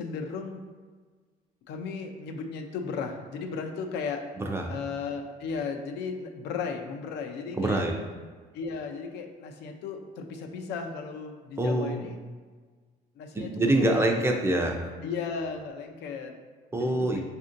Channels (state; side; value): normal; both; correlation 0.58